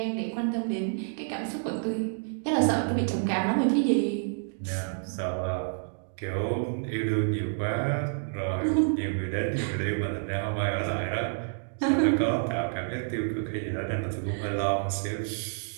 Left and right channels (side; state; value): left; silent; digital silence